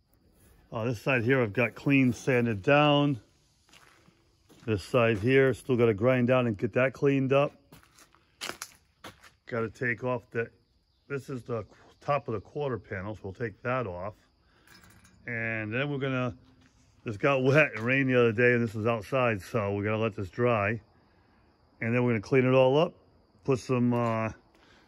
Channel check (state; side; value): identical; both; correlation 1.00